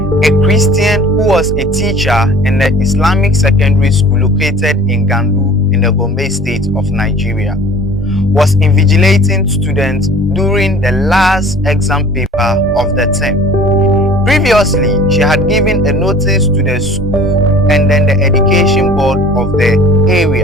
a Christian who was a teacher in the Islamic secondary school located in Gandu in the Gombe state of Nigeria, was invigilating students during the last exam paper of the term. Previously, she had given a notice to the school and then the education board of the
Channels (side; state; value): both; normal; correlation 0.46